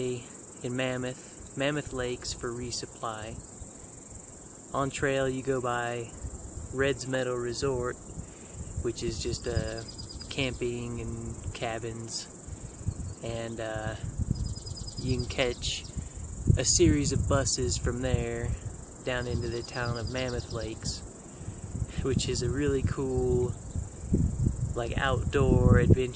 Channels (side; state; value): both; identical; correlation 1.00